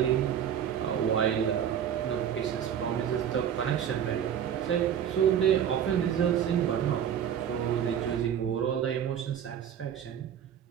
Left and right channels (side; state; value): left; quieter; 9.2 dB